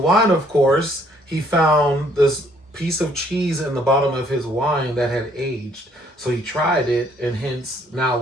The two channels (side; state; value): both; normal; correlation 0.64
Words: of course, he found this piece of cheese in the bottom of his wine that had aged. So he tried it, and hence now